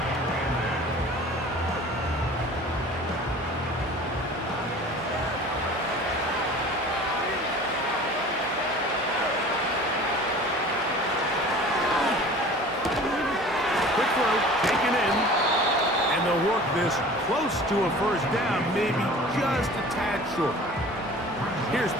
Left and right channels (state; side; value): normal; both; correlation 0.43